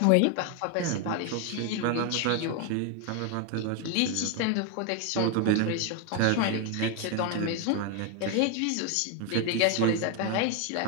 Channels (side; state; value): both; different; correlation 0.01